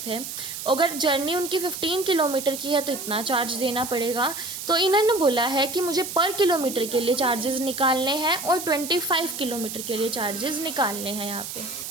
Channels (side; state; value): right; noise; hiss, 8 dB below the sound